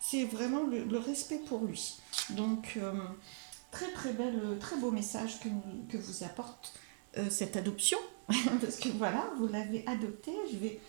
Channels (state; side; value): silent; left; 52 dB below the other